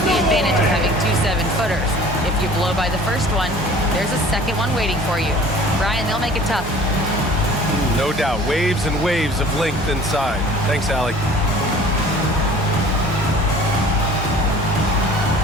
the advantage of having 2 7-footers. If you blow by the first one, there's a second one waiting for you. Brian, they'll make it tough. No doubt. Waves and waves of length inside. Thanks, Allie.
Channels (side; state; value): both; normal; correlation 0.47